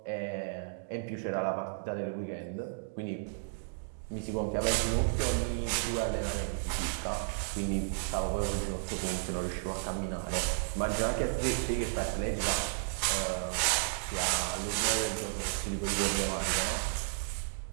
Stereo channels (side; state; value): left; silent; digital silence